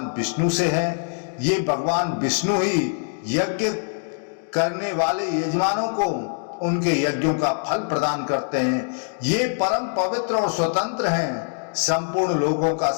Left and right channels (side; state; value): right; silent; digital silence